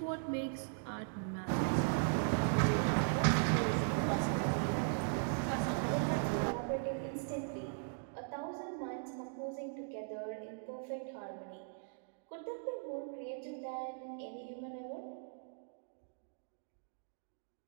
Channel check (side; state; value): left; silent; digital silence